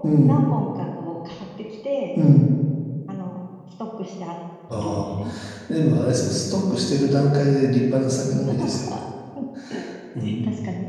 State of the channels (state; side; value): identical; both; correlation 1.00